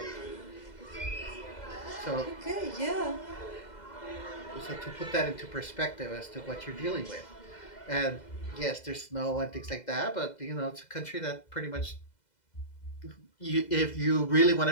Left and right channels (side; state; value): right; late; 2.0 ms